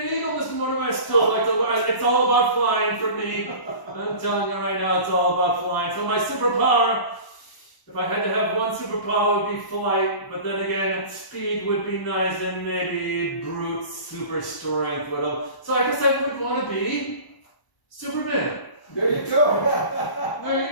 eagle, Mr. Morningway. I still like to. It's all about flying for me. I'm telling you right now, it's all about flying. So my superpower. If I had to have one superpower, it would be flight, but then again, speed would be nice, and maybe brute super strength would have. So I guess I would want to be Superman. There you go. There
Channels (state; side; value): late; right; 1.0 ms